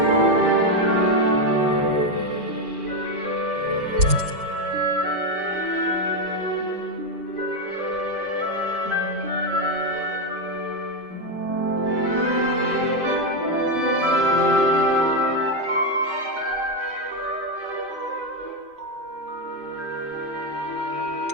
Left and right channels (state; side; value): late; left; 5.2 ms